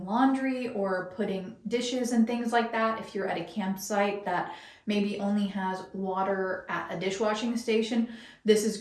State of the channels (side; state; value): both; identical; correlation 1.00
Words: laundry or putting dishes and things like that. If you're at a campsite that maybe only has water at a dishwashing station, this is